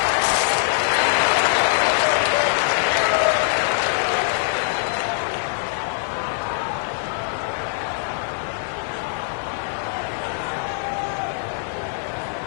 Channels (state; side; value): silent; right; digital silence